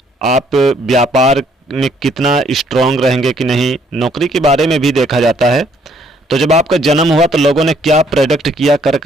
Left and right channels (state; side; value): normal; both; correlation 0.66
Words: आप व्यापार में कितना स्ट्रांग रहेंगे कि नहीं, नौकरी के बारे में भी देखा जाता है। तो जब आपका जन्म हुआ तो लोगों ने क्या प्रेडिक्ट किया कर्क